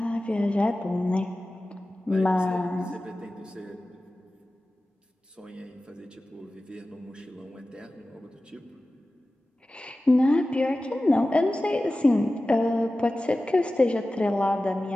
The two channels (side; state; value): both; normal; correlation 0.96